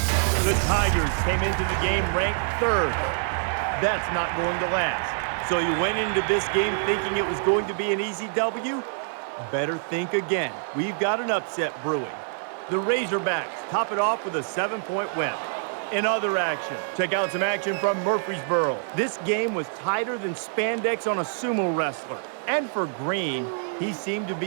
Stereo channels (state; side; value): silent; left; 61 dB below the other